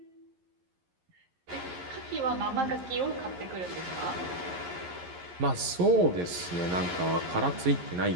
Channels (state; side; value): late; left; 11 ms